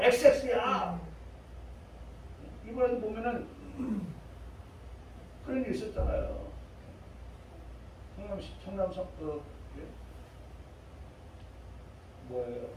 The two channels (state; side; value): identical; both; correlation 1.00